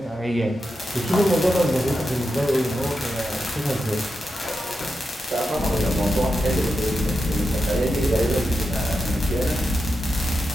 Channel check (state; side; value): normal; both; correlation 0.88